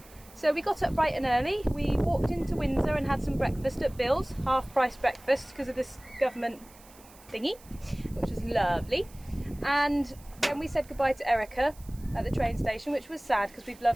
So we got up bright and early. We walked into Windsor and had some breakfast at Bill's, half-price breakfast because of this government thingy, which was lovely. And then we said goodbye to Erica at the train station, which was sad because we've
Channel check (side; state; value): right; noise; hiss, 24 dB below the sound